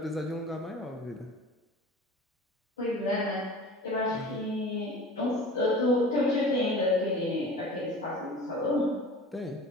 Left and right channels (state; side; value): normal; both; correlation 0.39